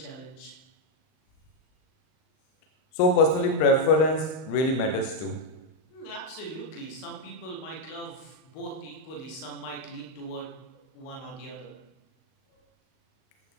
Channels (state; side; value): late; right; 38 ms